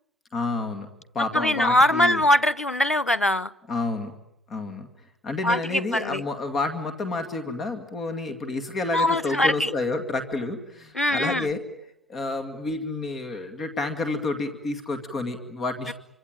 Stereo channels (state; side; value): normal; both; correlation 0.66